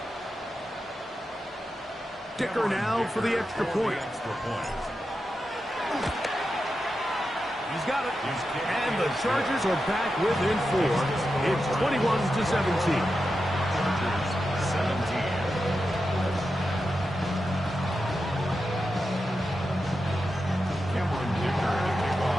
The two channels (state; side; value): normal; both; correlation 0.89